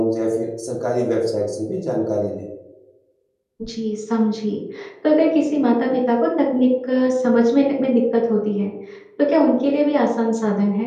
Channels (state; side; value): identical; both; correlation 1.00